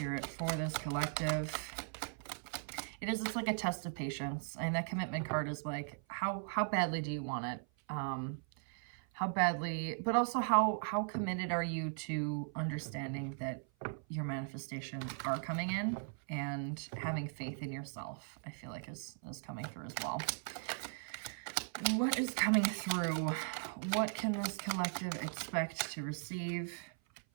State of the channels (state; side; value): silent; left; 52 dB below the other